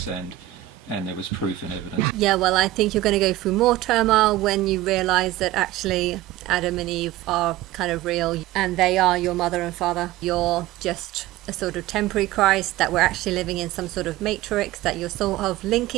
and there was proof and evidence. Yeah, well, I think you're going to go through more turmoil when you realise that actually Adam and Eve are kind of real, and they are your mother and father. You're just a sort of temporary Christ, that we're actually living in some sort of matrix, that you're sort of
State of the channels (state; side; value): quieter; left; 15.6 dB